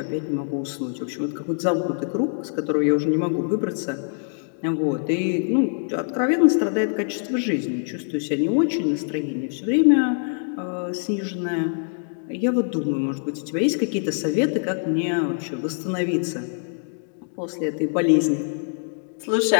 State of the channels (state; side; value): silent; right; digital silence